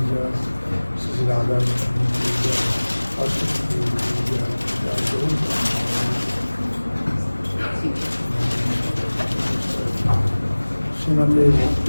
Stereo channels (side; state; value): both; inverted; correlation -1.00